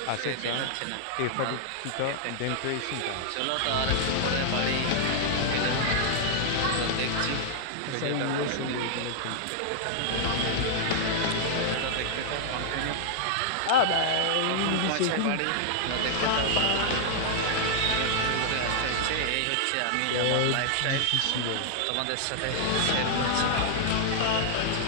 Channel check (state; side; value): different; both; correlation -0.01